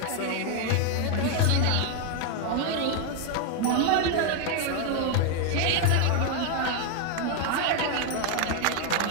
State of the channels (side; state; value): both; different; correlation 0.01